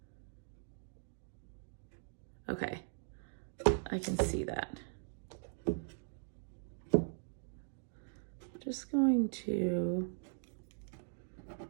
okay, I can see that. Just going to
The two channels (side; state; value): left; silent; digital silence